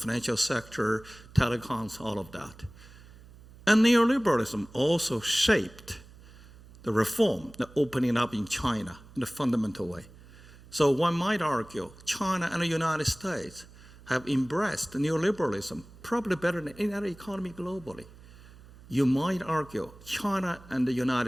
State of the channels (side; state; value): right; noise; hum, 21 dB below the sound